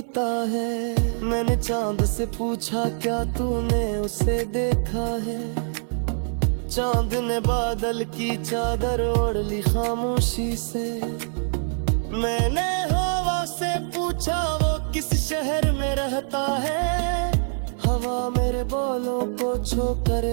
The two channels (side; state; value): left; silent; 56 dB below the other